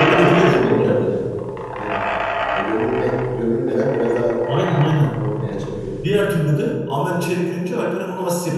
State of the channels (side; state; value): both; identical; correlation 1.00